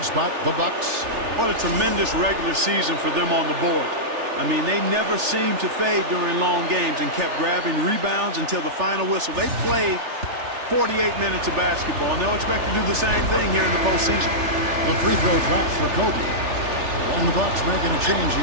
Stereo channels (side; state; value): left; late; 3.4 ms